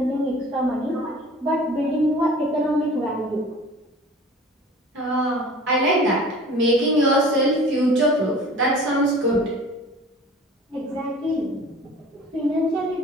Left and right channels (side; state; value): both; normal; correlation 0.44